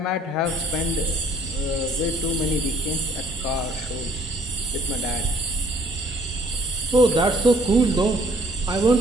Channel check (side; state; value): both; normal; correlation 0.60